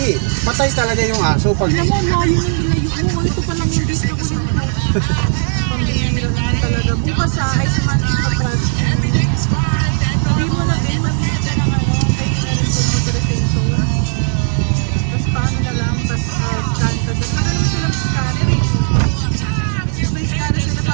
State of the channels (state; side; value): silent; left; 67 dB below the other